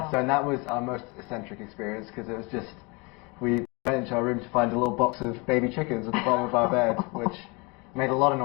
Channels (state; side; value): quieter; right; 28.4 dB